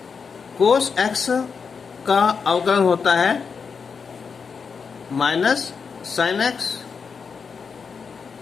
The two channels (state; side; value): quieter; right; 5.7 dB